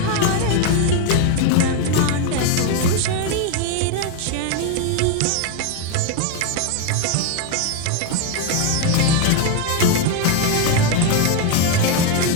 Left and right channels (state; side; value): different; both; correlation 0.01